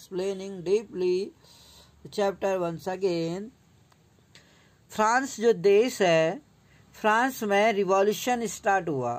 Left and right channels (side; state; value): both; identical; correlation 1.00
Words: deeply the chapter once again. France जो देश है, फ्रांस में रिवॉल्यूशन स्टार्ट हुआ.